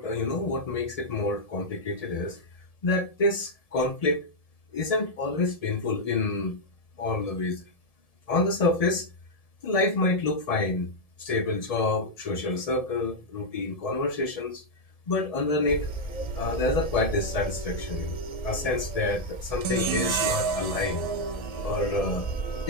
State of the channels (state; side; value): late; right; 1.7 ms